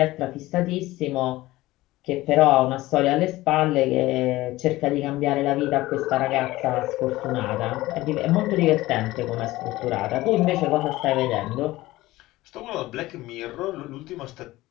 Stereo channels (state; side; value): quieter; right; 18.0 dB